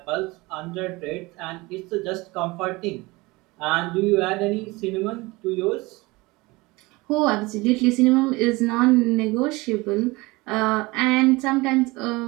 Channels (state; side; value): quieter; left; 22.8 dB